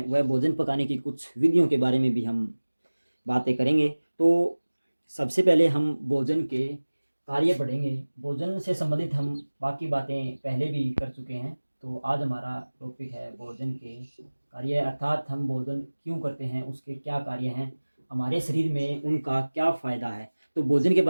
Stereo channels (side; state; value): both; inverted; correlation -1.00